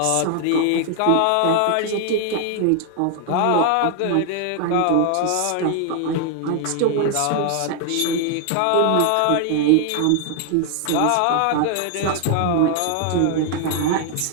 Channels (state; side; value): different; both; correlation 0.00